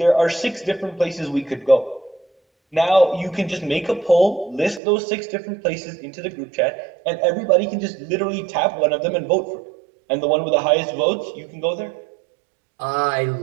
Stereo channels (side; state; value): left; drops out; at 4.8 s